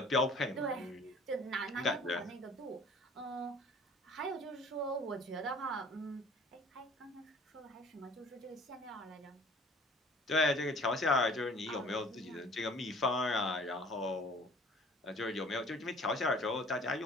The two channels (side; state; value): both; normal; correlation 0.51